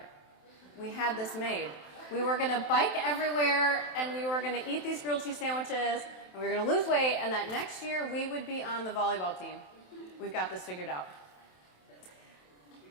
We had this made. We were going to bike everywhere, and we were going to eat these grilled cheese sandwiches, and we were going to lose weight, and that next year we would be on the volleyball team. We've got this figured out.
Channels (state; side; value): late; right; 27 ms